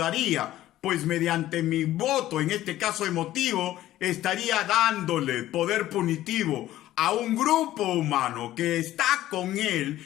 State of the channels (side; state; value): right; quieter; 14.3 dB